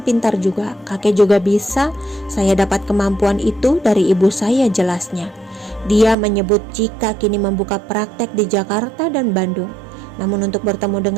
pintar juga. Kakek juga bisa. Saya dapat kemampuan itu dari ibu saya, jelasnya. Dia menyebut jika kini membuka praktek di Jakarta dan Bandung. Namun untuk bertemu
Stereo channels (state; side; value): drops out; left; at 6.2 s